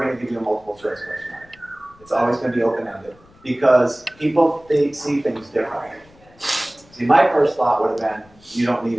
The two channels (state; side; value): noise; left; rumble, 28 dB below the sound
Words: going to give you a multiple choice question. It's always going to be open-ended because they see things differently. See, my first thought would have been, you don't need